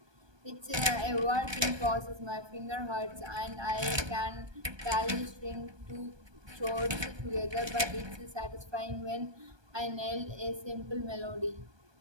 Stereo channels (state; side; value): late; left; 1.2 ms